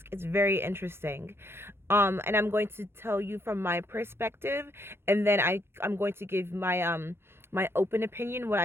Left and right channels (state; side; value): late; left; 0.12 ms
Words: It's very interesting. And I'm going to tell you from my perspective, and then I'm going to give my open opinion, what